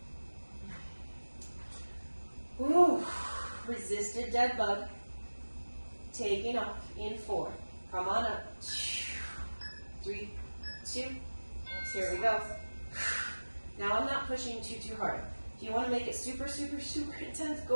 Ooh, resisted dead bug. Taking off in 4. Come on up. 3, 2. Here we go. Now I'm not pushing too hard. If you want to make it super, super, super intense,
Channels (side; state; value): both; inverted; correlation -1.00